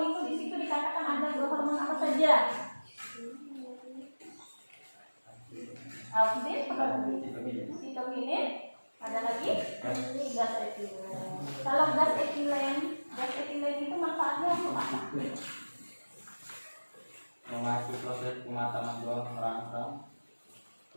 itu di situ dikatakan ada dua hormon apa saja? Auksin, sitokinin, ada lagi gas etilen. Kalau gas etilen itu manfaatnya untuk apa? Memacu proses pematangan buah merangsang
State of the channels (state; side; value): inverted; both; correlation -1.00